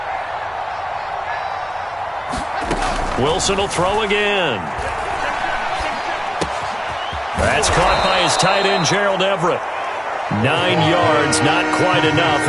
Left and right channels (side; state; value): both; identical; correlation 1.00